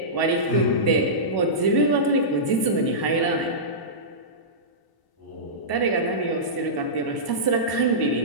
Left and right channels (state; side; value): late; right; 1.0 ms